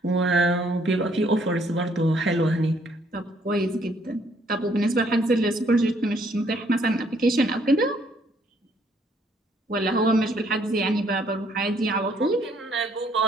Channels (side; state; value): both; normal; correlation 0.66